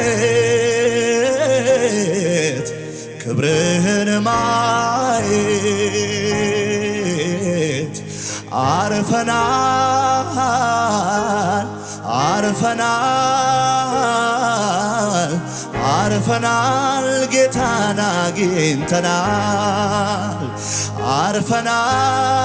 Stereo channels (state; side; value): identical; both; correlation 1.00